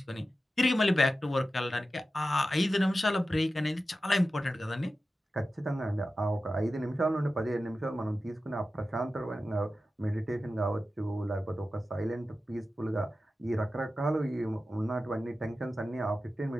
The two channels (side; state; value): both; normal; correlation 0.93